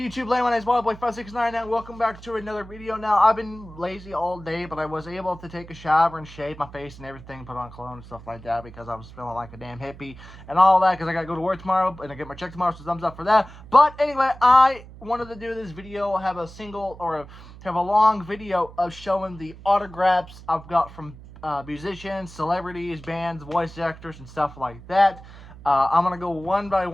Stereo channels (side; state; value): right; noise; hum, 17 dB below the sound